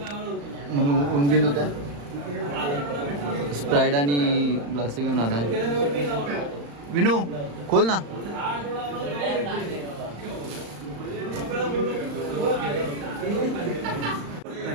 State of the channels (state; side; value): late; left; 35 ms